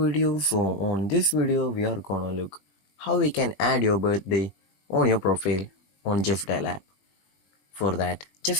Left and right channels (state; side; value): late; right; 21 ms